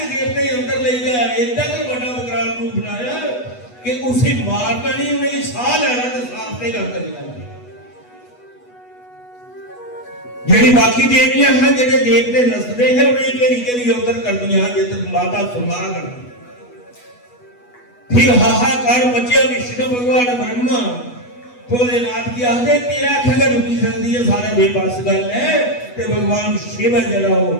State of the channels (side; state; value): right; late; 8.2 ms